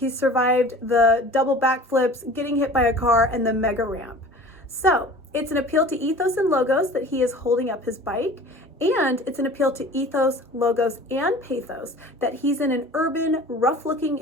survived the double backflips, getting hit by a car, and the mega ramp. So it's an appeal to ethos and logos that he is holding up his bike, and it's an appeal to ethos, logos, and pathos that he's in an urban, rough-looking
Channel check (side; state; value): both; normal; correlation 0.42